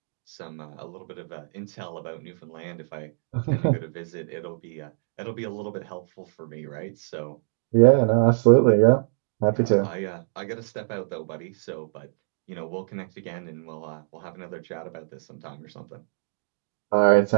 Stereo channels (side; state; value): left; silent; digital silence